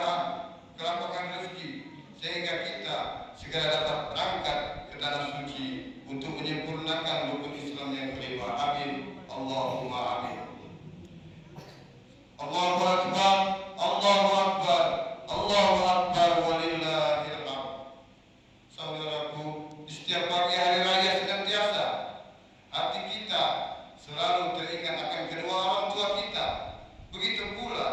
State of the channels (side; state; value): both; identical; correlation 1.00